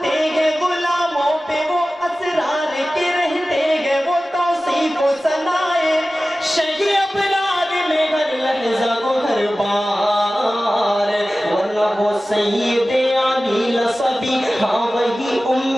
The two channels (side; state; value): both; normal; correlation 0.96